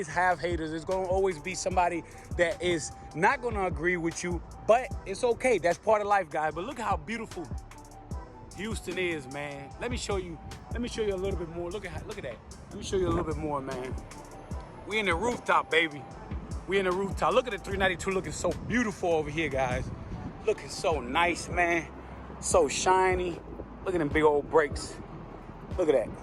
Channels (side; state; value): both; identical; correlation 1.00